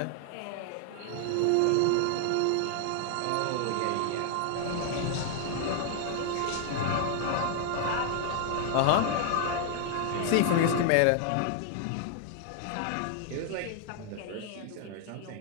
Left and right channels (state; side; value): different; both; correlation 0.00